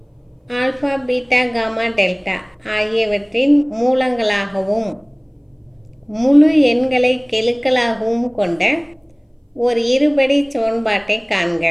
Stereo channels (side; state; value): both; identical; correlation 1.00